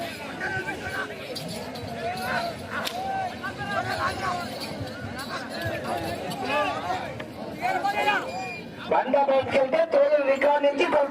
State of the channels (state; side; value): identical; both; correlation 1.00